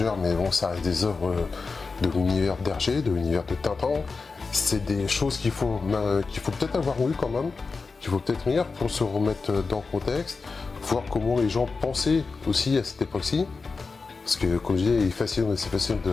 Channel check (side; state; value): right; quieter; 4.4 dB